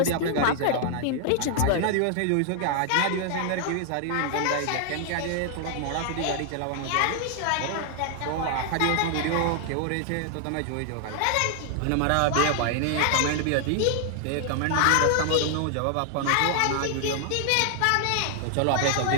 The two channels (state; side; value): different; both; correlation 0.00